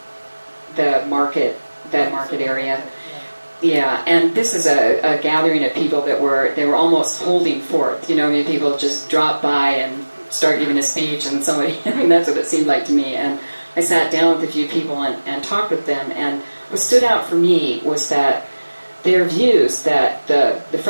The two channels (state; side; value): inverted; both; correlation -1.00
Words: the market area? Yeah, and this is a gathering of people they were almost holding forth. People just drop by and start giving a speech, and somebody, that's what it seemed like to me. And I sat down with a few people and talked with them, and what stood out for me was that their views that the